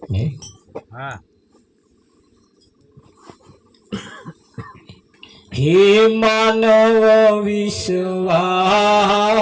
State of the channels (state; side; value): identical; both; correlation 1.00